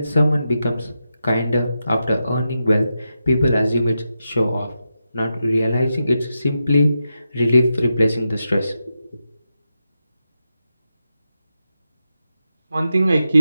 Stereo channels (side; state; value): both; inverted; correlation -0.88